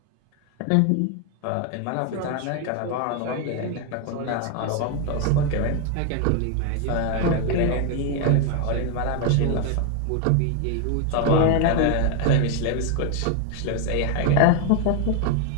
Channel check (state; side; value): different; both; correlation 0.01